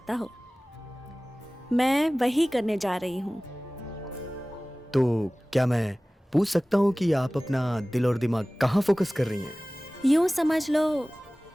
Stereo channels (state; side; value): normal; both; correlation 0.98